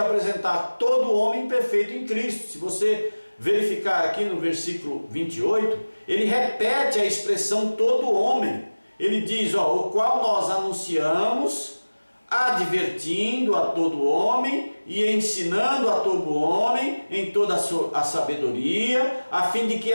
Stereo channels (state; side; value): inverted; both; correlation -1.00